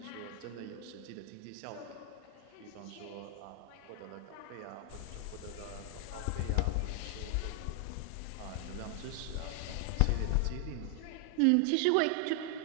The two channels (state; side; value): different; both; correlation 0.00